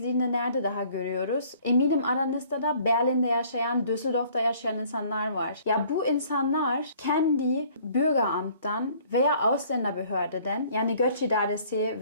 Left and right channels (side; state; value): both; inverted; correlation -0.56